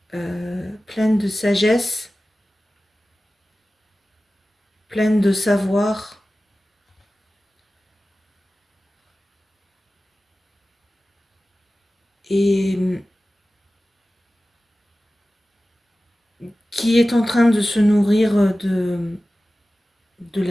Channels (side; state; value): both; normal; correlation 0.96